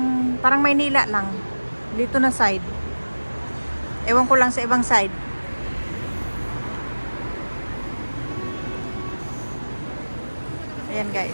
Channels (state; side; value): inverted; both; correlation -1.00